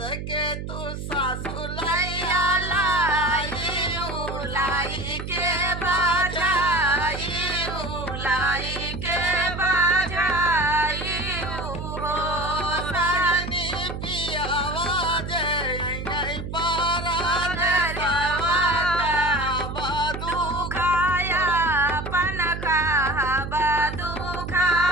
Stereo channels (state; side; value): noise; right; hum, 7 dB below the sound